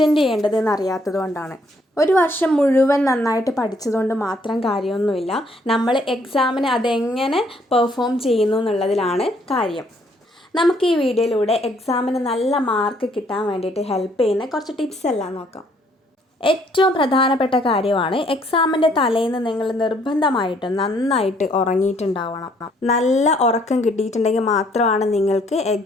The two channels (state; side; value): normal; both; correlation 0.66